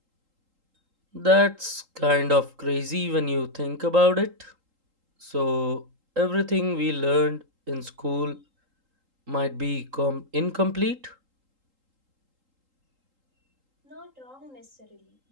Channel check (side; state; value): left; late; 3.8 ms